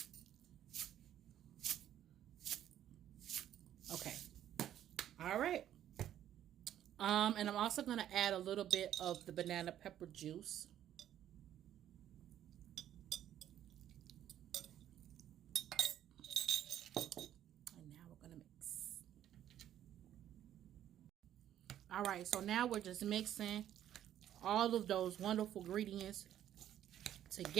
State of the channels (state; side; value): quieter; left; 11.3 dB